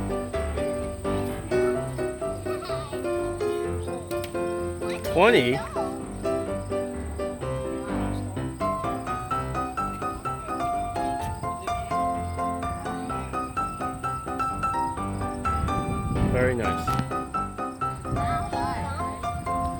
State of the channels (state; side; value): identical; both; correlation 1.00